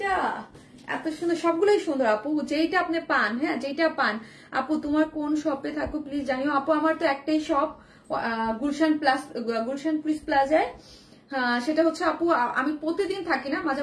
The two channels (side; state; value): both; identical; correlation 1.00